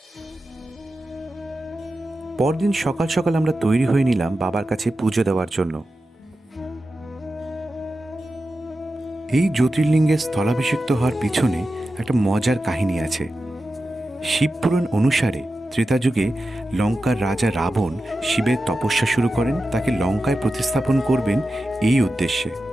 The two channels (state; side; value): normal; both; correlation 0.92